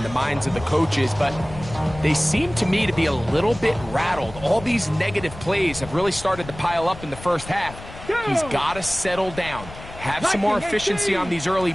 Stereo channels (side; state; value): left; noise; rumble, 14 dB below the sound